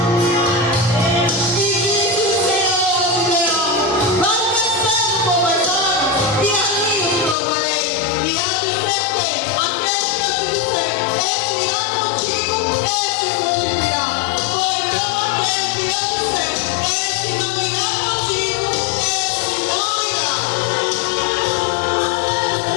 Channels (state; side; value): drops out; right; at 7.4 s